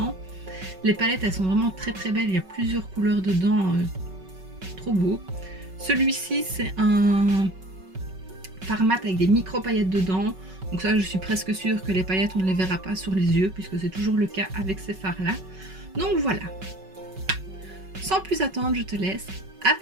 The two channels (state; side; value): late; left; 5.3 ms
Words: Les palettes elles sont vraiment très très belles, il y a plusieurs couleurs dedans, trop beau. Celui-ci c'est un fard mat avec des micro paillettes dedans, donc ça je suis presque sûre que les paillettes on ne les verra pas sur les yeux puisque c'est toujours le cas avec ces fards là. Donc voilà. Sans plus attendre, je te laisse